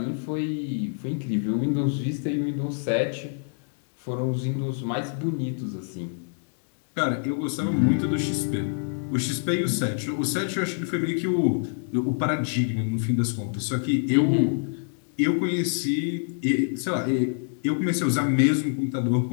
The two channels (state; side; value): silent; right; digital silence